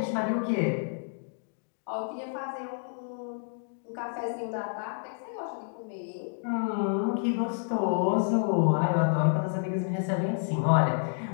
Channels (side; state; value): right; silent; digital silence